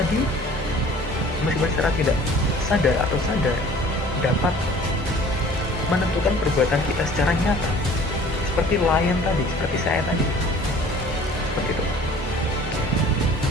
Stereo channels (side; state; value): both; normal; correlation 0.49